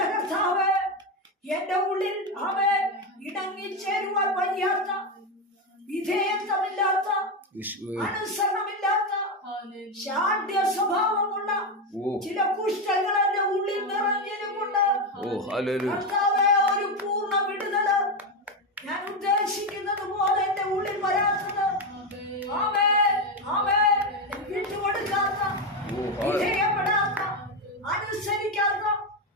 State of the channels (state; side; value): normal; both; correlation 0.10